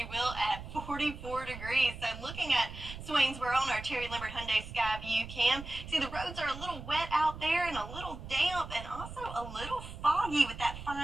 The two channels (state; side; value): noise; right; rumble, 11 dB below the sound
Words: will, at 44 degrees. So looking at Swainsboro on our Terry Lambert Hyundai Skyview cam, see the roads are a little wet out there and a little damp and also a little foggy with that